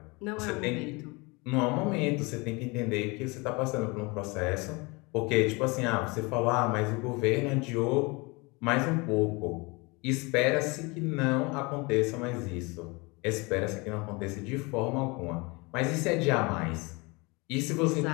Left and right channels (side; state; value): right; quieter; 26.9 dB